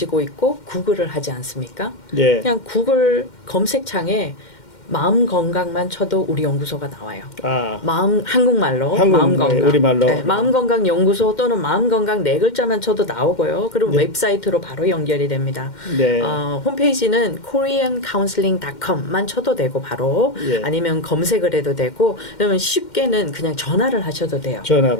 있고 구글을 하지 않습니까? 네. 그냥 구글 검색창에 마음 건강만 쳐도 우리 연구소가 나와요. 한국말로 마음 건강. 우리말로. 네, 마음 건강 연구소 또는 마음 건강 네 글자만 쳐도 나오고요. 그리고 웹사이트로 바로 연결이 됩니다. 네. 홈페이지는 koreancounseling.com만 쳐도 되고 바로 예. 아니면 검색을 해도 되고 그러면 쉽게는 그냥 전화를 하셔도 돼요.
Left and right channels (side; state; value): right; late; 2.1 ms